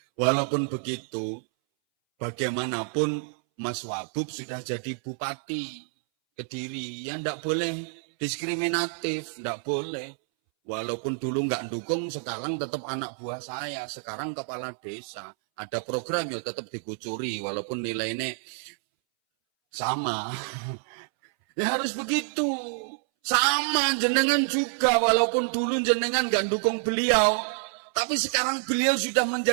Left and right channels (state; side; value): silent; left; 59 dB below the other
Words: bagaimanapun Mas Wabub sudah jadi bupati Kediri. Ya ndak boleh diskriminatif, ndak boleh. Walaupun dulu nggak dukung, sekarang tetap anak buah saya. Sekarang kepala desa. Ada program ya tetap dikucuri, walaupun nilainya sama. Ya harus begitu. Sama jenengan juga, walaupun dulu jenengan nggak dukung beliau. Tapi sekarang beliau sudah